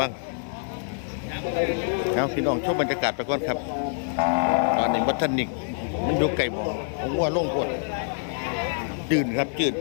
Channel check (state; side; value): silent; right; 61 dB below the other